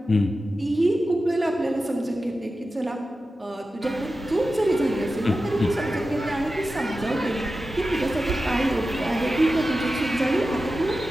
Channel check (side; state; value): both; normal; correlation 0.93